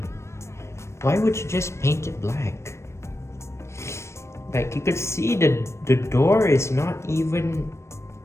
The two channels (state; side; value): late; right; 0.13 ms